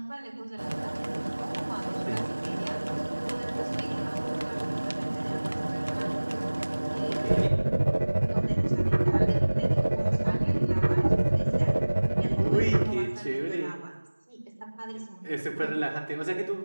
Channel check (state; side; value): inverted; both; correlation -1.00